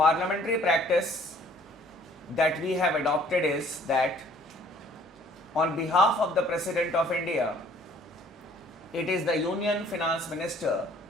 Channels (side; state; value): both; normal; correlation 0.57